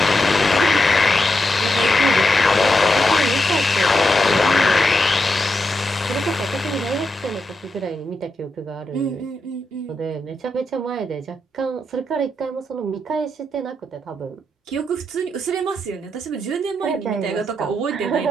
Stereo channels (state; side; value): normal; both; correlation 0.85